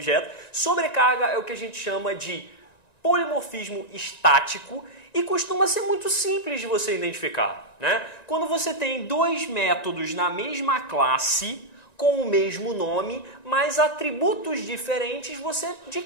Sobrecarga é o que a gente chama de polimorfismo estático e costuma ser muito simples de você identificar, né? Quando você tem dois métodos na mesma classe, com o mesmo nome, mas atributos diferentes, você de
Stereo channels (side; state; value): right; late; 1.9 ms